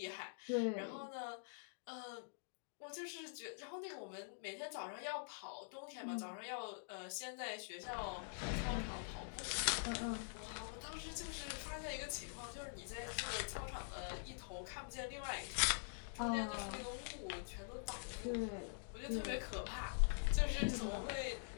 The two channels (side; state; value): right; silent; digital silence